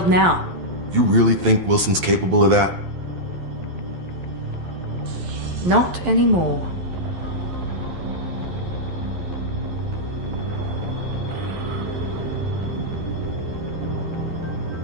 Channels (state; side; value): late; left; 11 ms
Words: now. You really think Wilson's capable of that? Not anymore.